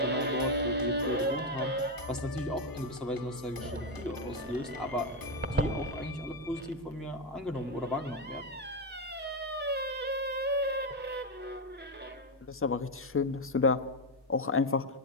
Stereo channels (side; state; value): both; normal; correlation 0.07